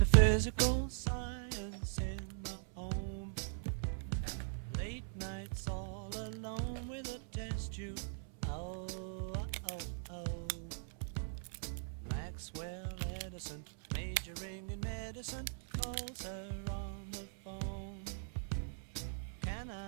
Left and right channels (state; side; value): silent; left; 51 dB below the other